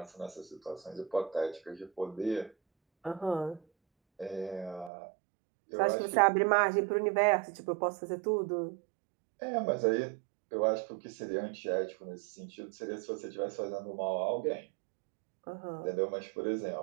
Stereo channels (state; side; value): drops out; left; at 4.9 s